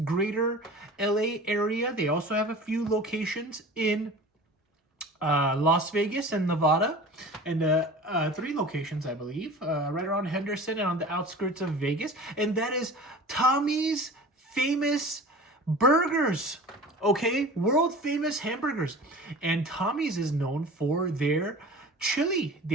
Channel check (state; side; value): normal; both; correlation 0.39